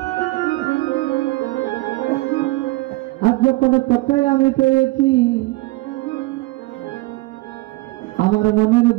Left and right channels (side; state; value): left; quieter; 21.1 dB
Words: আজ যখন তোকে আমি পেয়েছি, আমার মনের